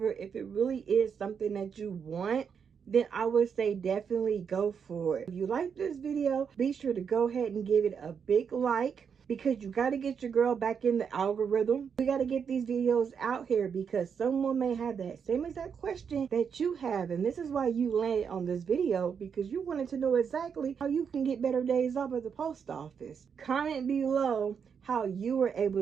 if it really is something that you want, then I would say definitely go for it. If you like this video, be sure to go ahead and give it a big like, because you got to get your girl back in the algorithm. We got to get these videos out here, because someone may have that same exact question that you have. And this is why you landed on this video, because you wanted to know exactly how you can get better days off at the post office. Comment below how you were able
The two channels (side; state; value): left; quieter; 6.8 dB